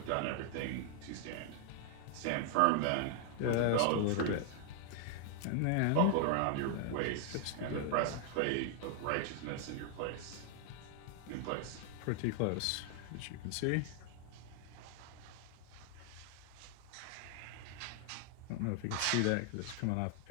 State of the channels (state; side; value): different; both; correlation 0.00